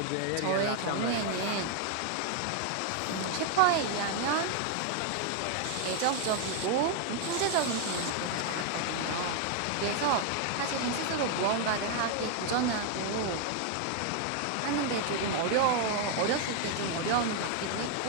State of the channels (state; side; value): different; both; correlation 0.00